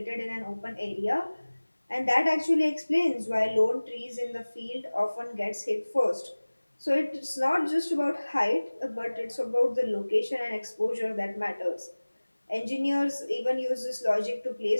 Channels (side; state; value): both; inverted; correlation -1.00